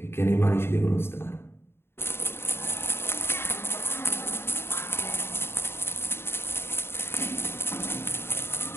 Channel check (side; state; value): right; late; 0.11 ms